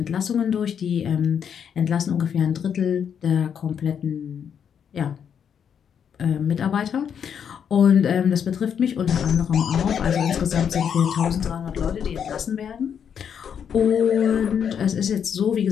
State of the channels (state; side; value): quieter; right; 7.9 dB